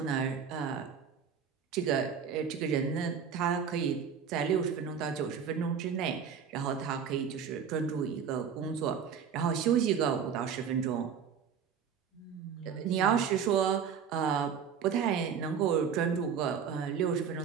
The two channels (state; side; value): quieter; left; 7.2 dB